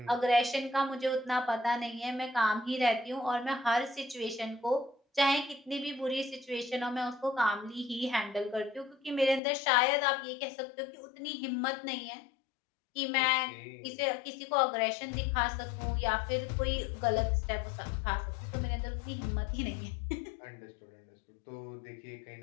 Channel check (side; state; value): right; drops out; at 9.4 s